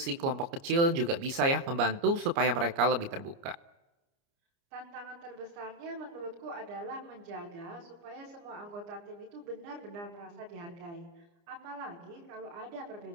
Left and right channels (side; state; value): left; late; 29 ms